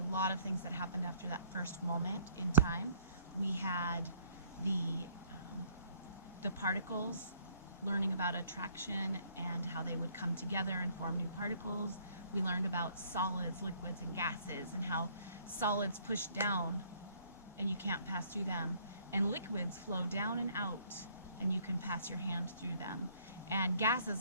lot of things that happened after that first moment in time. We had the particles, learning about attraction and how they would come together and form new particles. We learned about solids, liquids, and gases, and how solids push down and you can't pass through them, and liquids flow down and out and you can pass your hand through them. And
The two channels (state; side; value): inverted; both; correlation -0.62